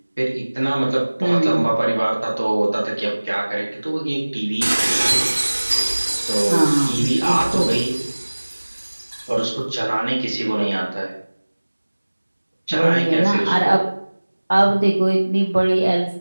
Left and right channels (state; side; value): inverted; both; correlation -1.00